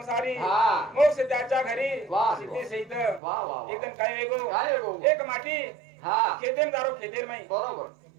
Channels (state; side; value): drops out; left; at 3.2 s